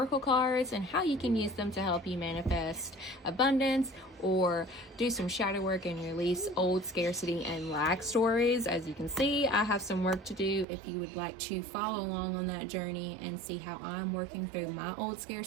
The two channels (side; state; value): left; drops out; at 10.7 s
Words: cards, and how you can use them to help you manifest abundance or do some shadow work and release old scarcity and lack stories. As you can see, I have some work to do. If you would like to follow along on that journey and see how I'm working through my old